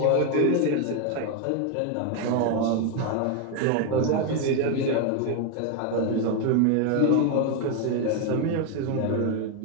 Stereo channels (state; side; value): different; both; correlation 0.01